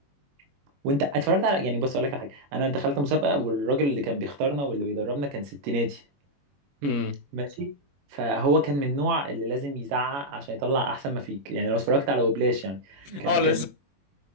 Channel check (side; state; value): left; late; 21 ms